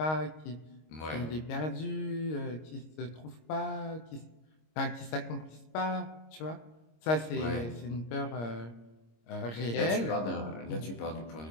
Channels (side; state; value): right; late; 26 ms